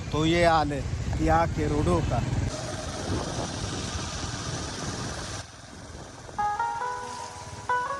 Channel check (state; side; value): identical; both; correlation 1.00